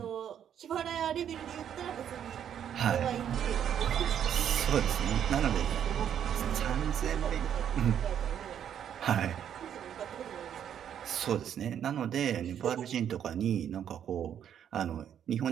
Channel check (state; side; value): quieter; left; 9.3 dB